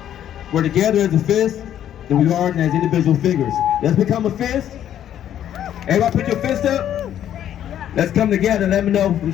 we're together as a fist than we are as individual figures. Let's become a fist. Everybody put your fist up. Let's come together and let me know. I'm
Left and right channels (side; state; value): right; quieter; 10.7 dB